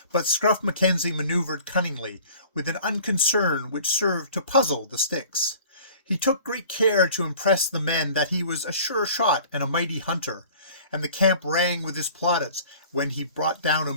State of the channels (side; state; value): both; inverted; correlation -0.47